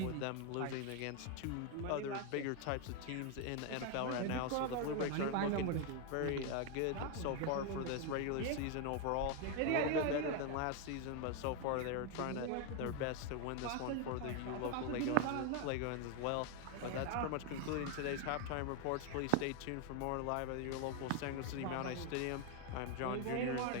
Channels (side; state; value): both; different; correlation 0.01